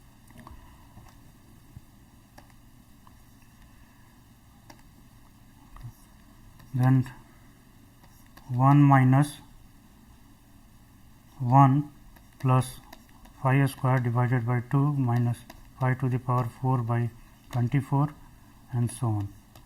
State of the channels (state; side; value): identical; both; correlation 1.00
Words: Then 1 minus 1 plus phi square divided by 2 minus phi to the power 4 by 24 and so on,